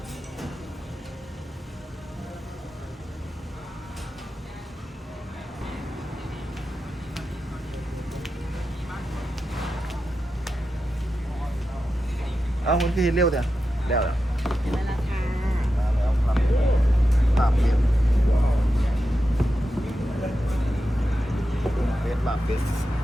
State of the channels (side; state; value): both; normal; correlation 0.90